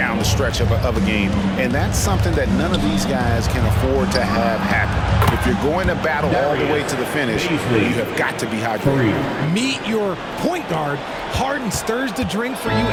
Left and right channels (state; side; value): identical; both; correlation 1.00